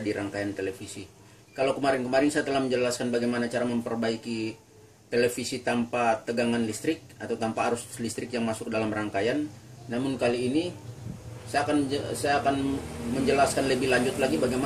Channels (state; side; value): identical; both; correlation 1.00